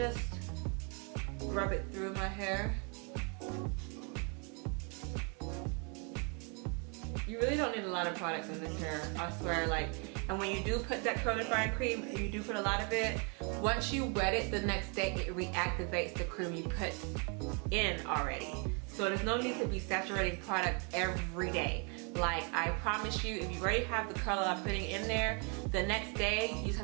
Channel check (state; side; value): quieter; left; 35.7 dB